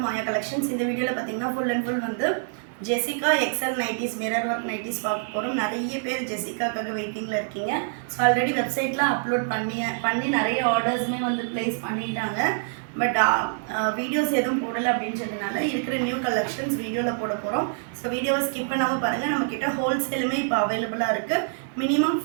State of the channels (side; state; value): left; silent; digital silence